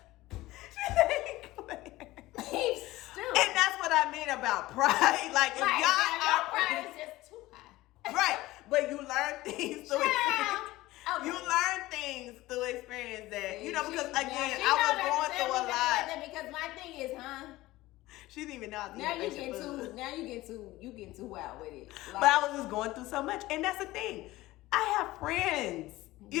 Beef stew. And that's what I mean about pride. Like, if Right, y'all your pride is just too high. right, but you learn things through experience. Okay. You learn things through experience that, because again, She I was going through a lot. Because my thing is, She didn't even know I was now you eating get food. you getting too wild with it. But I was just going through so much. And that's the thing. I have friends.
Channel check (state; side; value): quieter; right; 18.0 dB